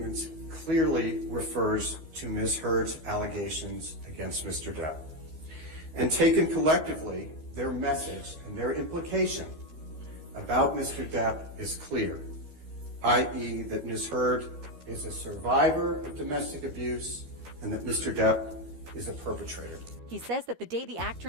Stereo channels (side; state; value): left; late; 13 ms